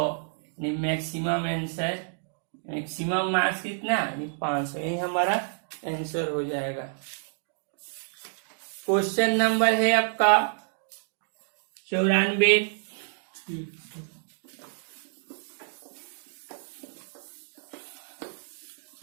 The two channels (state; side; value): silent; left; digital silence